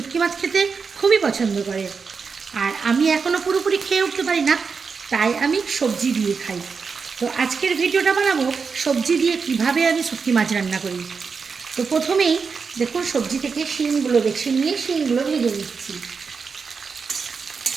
মাছ খেতে খুবই পছন্দ করে। আর আমি এখনও পুরোপুরি খেয়ে উঠতে পারি না, তাই আমি সবজি দিয়ে খাই। তো আজকের ভিডিওটা বানাবো সবজি দিয়ে কিভাবে আমি শুটকি মাছ রান্না করি। তো প্রথমেই দেখুন, সবজি থেকে শিমগুলো বেছে নিয়ে শিমগুলো ভেজে নিচ্ছি।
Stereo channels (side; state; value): left; quieter; 5.3 dB